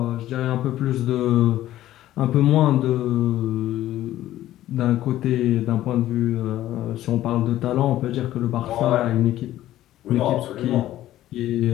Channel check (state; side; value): quieter; right; 13.9 dB